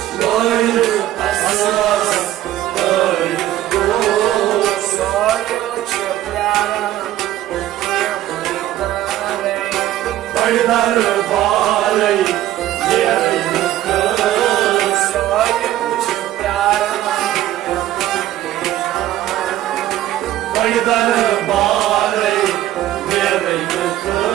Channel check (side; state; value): left; quieter; 13.7 dB